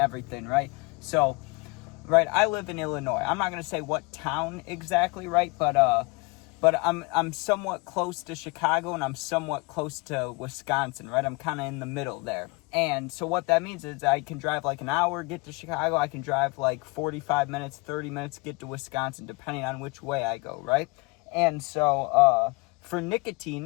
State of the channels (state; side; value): quieter; right; 27.7 dB